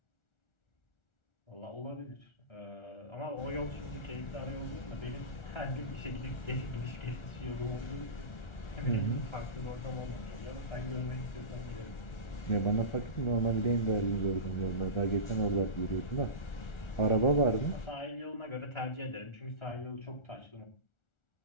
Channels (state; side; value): late; right; 1.4 ms